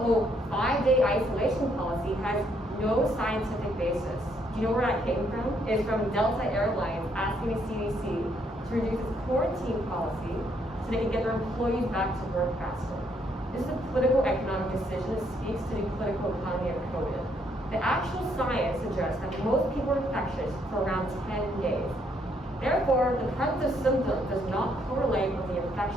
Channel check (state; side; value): normal; both; correlation 0.71